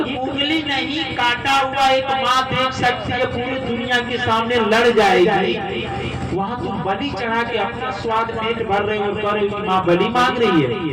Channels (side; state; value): both; identical; correlation 1.00